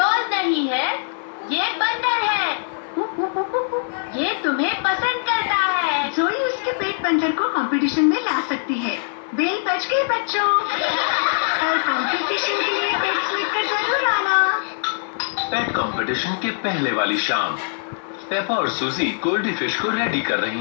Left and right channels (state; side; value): silent; right; 64 dB below the other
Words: नहीं है, ये बंदर है। ये तुम्हें पसंद करता है। जोई उसके पेट बंदर को कंपटीशन में ला सकती है। बेल बज गई बच्चों। कल कंपटीशन के लिए पेट्स लेकर जरूर आना। पेट कंपटीशन के पहले वाली शाम पेपा और सूजी गोल्डी फिश को रेडी कर